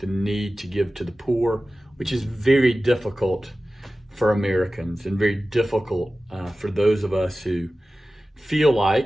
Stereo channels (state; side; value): normal; both; correlation 0.96